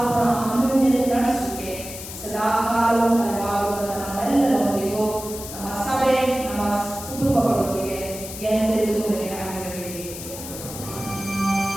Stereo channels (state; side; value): noise; left; hiss, 11 dB below the sound